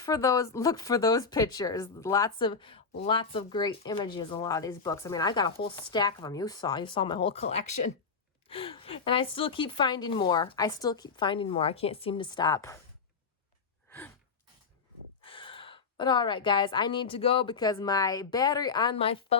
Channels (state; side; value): quieter; right; 5.2 dB